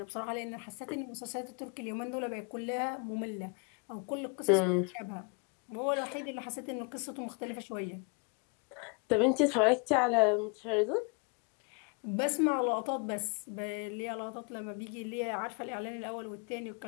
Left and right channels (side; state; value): right; quieter; 34.9 dB